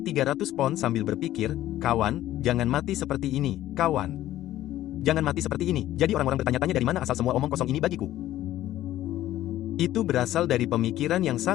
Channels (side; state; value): right; quieter; 13.9 dB